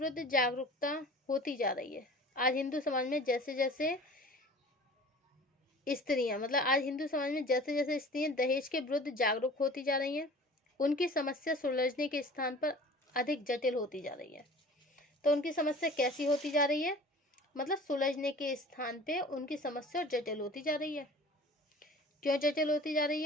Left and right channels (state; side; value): normal; both; correlation 0.43